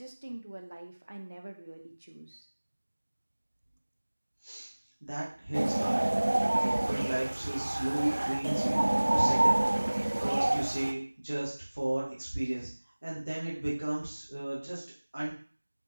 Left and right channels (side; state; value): both; inverted; correlation -1.00